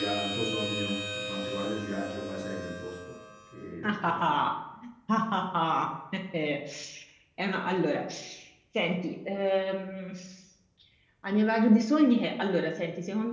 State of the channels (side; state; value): both; identical; correlation 1.00